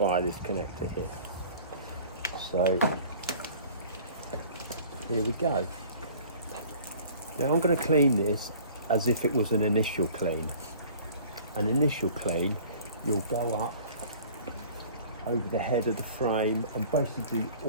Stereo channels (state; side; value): inverted; both; correlation -0.48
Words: this connector here. So here we go. Now I'm going to clean this as if it was an initial clean. An initial clean, you'll go up over the head of the frame and basically